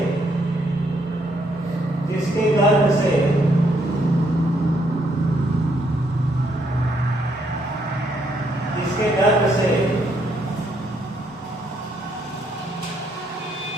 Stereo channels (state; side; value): normal; both; correlation 0.73